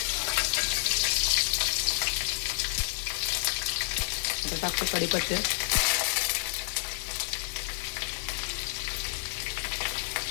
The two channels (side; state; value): right; silent; 58 dB below the other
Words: आता टाकतो कढीपत्ते,